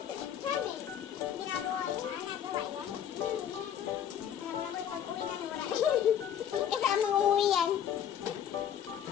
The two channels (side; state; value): right; quieter; 9.5 dB